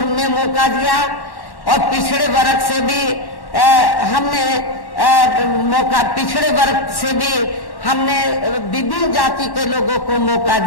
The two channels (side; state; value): right; late; 1.1 ms